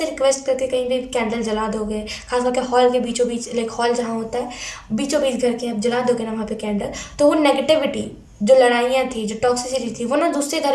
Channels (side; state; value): both; identical; correlation 1.00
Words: रिक्वेस्ट करके कहीं भी कैंडल जला दोगे, खास करके हॉल के बीचों बीच, लाइक हॉल जहाँ होता है बीचों बीच घर के आप जला दोगे ना वहाँ पे कैंडल, तो वो नेगेटिविटी, जो लड़ाइयाँ थी, जो टॉक्सिसिटी थी, वो ना दूसरे